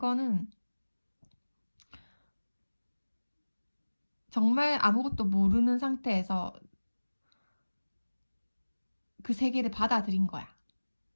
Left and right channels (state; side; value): inverted; both; correlation -1.00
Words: 정말 아무것도 모르는 상태에서 그 세계를 받아들인 거야.